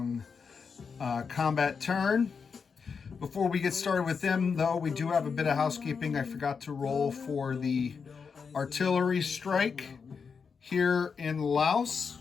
combat turn. Before we get started with them, though, we do have a bit of housekeeping. I forgot to roll for the artillery strike here in Laos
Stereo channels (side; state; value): right; quieter; 5.7 dB